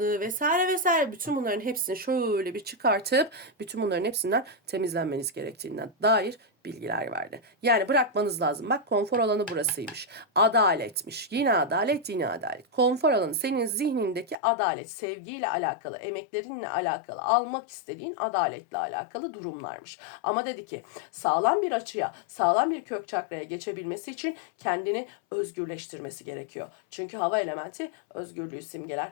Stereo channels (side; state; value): right; drops out; at 14.4 s